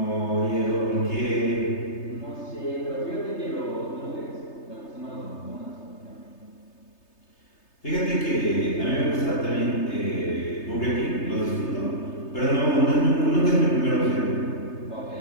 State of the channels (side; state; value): right; late; 3.3 ms